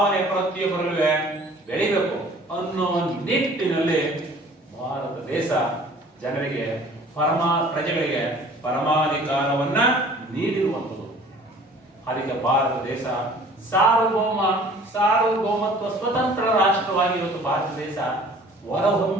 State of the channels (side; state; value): both; normal; correlation 0.50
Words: ಪ್ರತಿಯೊಬ್ಬರಲ್ಲೂ ಬೆಳಿಬೇಕು ಅನ್ನೋ ನಿಟ್ಟಿನಲ್ಲಿ ಭಾರತ ದೇಶ ಜನರಿಗೆ ಪ್ರಜೆಗಳಿಗೆ ಪರಮಾಧಿಕಾರವನ್ನ ನೀಡಿರುವಂಥದ್ದು. ಅದಕ್ಕೆ ಭಾರತ ದೇಶ ಸಾರ್ವಭೌಮತ್ವ ಸ್ವತಂತ್ರ ರಾಷ್ಟ್ರವಾಗಿ ಇವತ್ತು ಭಾರತ ದೇಶ